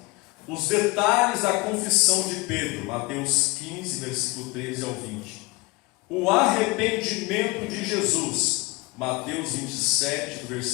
Os detalhes da confissão de Pedro, Mateus 15, versículo 13 ao 20. O arrependimento de Jesus, Mateus 27, do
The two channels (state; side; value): quieter; right; 23.7 dB